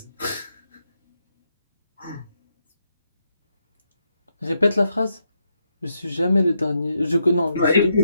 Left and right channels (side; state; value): both; inverted; correlation -0.80